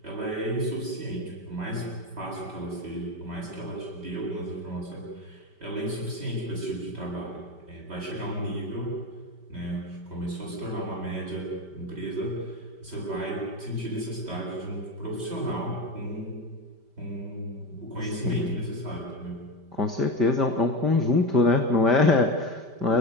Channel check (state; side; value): late; left; 5.1 ms